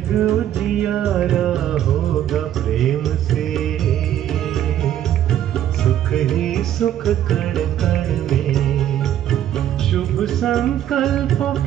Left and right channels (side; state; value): left; quieter; 11.2 dB